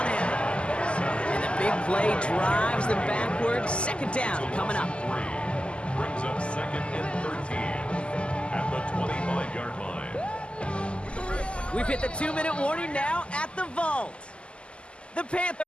him. And the big play drives them backwards. Second down coming up. Brings up second and 13 at the 25-yard line. We've hit the 2-minute warning now at the vault. The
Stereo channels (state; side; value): late; right; 0.053 ms